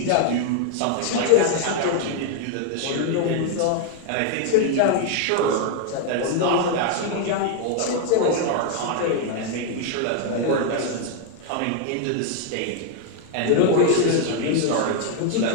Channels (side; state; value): both; different; correlation 0.00